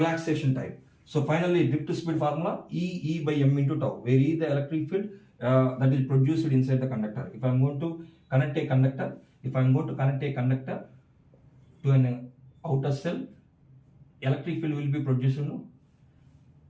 time. So finally drift speed formula E by m into tau, where E the electric field that is produced inside the conductor. If I am going to connect a conductor, to an outer cell, electric field will be produced,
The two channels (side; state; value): both; identical; correlation 1.00